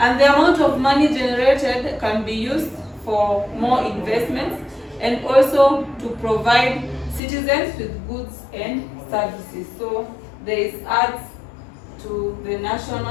the amount of money generated can be used for more investments and also to provide citizens with goods and services. So there is adds to the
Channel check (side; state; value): right; drops out; at 7.2 s